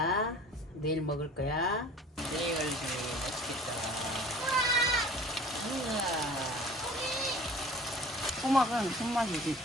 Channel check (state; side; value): normal; both; correlation 0.45